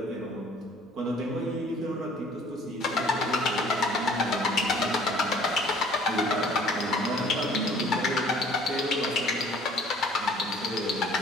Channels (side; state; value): both; normal; correlation 0.54